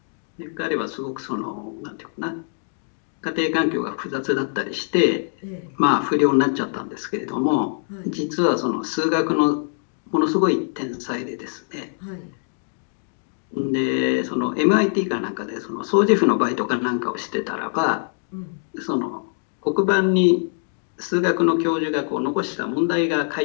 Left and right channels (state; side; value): silent; right; digital silence